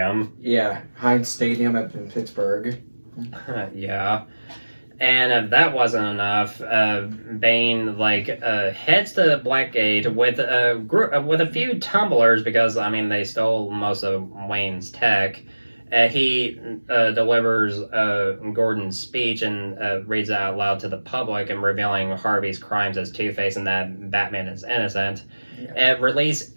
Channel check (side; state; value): both; inverted; correlation -1.00